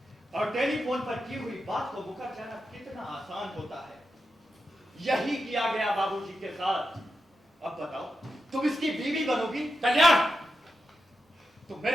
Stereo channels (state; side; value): normal; both; correlation 0.88